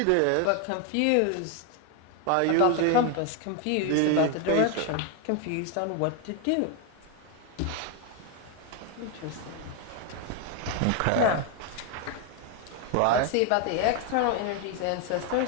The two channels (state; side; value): different; both; correlation 0.01